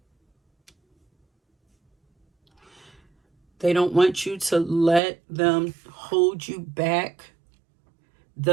They don't want you to let them hold you back.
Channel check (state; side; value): drops out; left; at 5.0 s